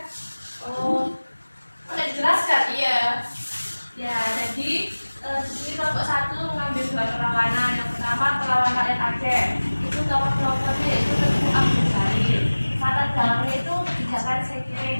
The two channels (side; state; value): both; inverted; correlation -1.00